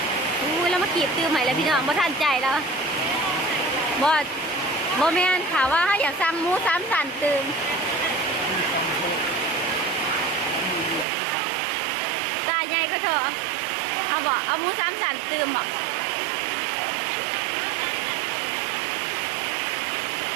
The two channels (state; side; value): drops out; left; at 11.1 s